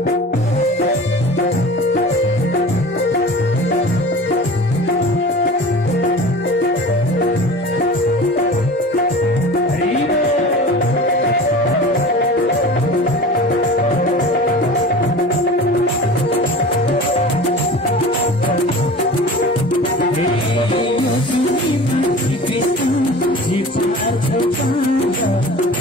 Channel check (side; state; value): both; normal; correlation 0.38